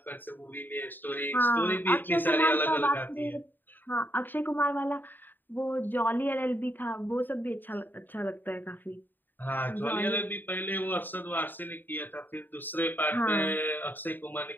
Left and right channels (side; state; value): right; late; 0.091 ms